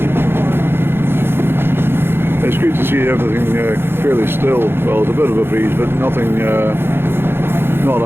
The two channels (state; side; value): late; left; 0.11 ms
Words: It's good to see everything fairly still. Well, there's a bit of a breeze, but nothing, not